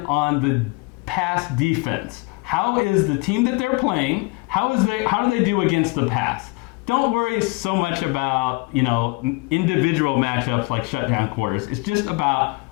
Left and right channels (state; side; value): quieter; right; 26.0 dB